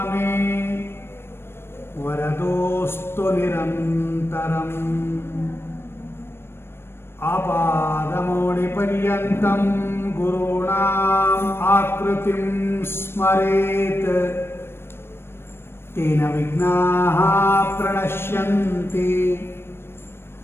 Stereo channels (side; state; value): right; late; 0.12 ms